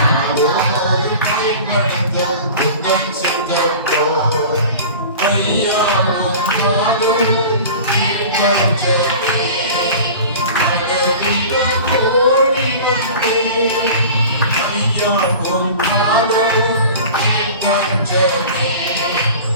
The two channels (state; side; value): inverted; both; correlation -0.38